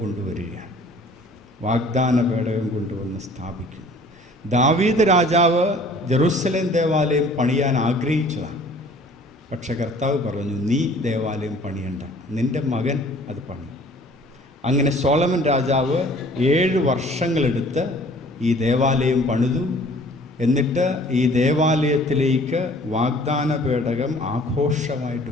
കൊണ്ടുവരികയാണ്. വാഗ്ദാന പേടകം കൊണ്ടുവന്ന് സ്ഥാപിക്കുന്നു. ദാവീദ് രാജാവ് ജെറുസലേം ദേവാലയം പണിയാൻ ആഗ്രഹിച്ചതാണ്. പക്ഷെ കർത്താവ് പറഞ്ഞു, നീ ദേവാലയം പണിയണ്ട, നിൻ്റെ മകൻ അത് പണി. അങ്ങനെ സോളമൻ രാജാവ് 7 വർഷങ്ങളെടുത്ത് ഈ ദേവാലയം പണിതു. എന്നിട്ട് ഈ ദേവാലയത്തിലേക്ക് വാഗ്ദാന പേടകം ആഘോഷമായിട്ട്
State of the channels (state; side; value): normal; both; correlation 0.52